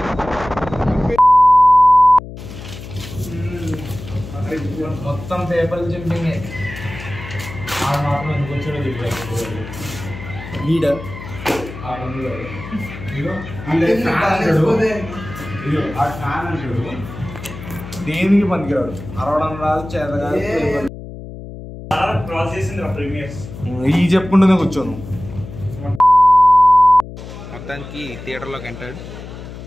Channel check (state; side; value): noise; left; hum, 12 dB below the sound